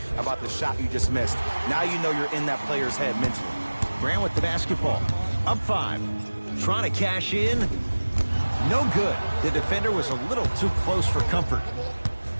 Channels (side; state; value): both; inverted; correlation -1.00